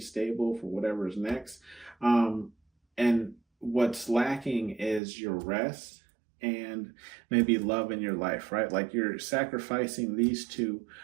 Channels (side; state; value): left; drops out; at 5.0 s